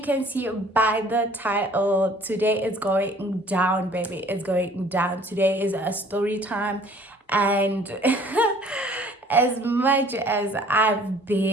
can see by the title, today is going down, baby. It's going down. Today is a story time, and as much as I've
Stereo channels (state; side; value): normal; both; correlation 0.54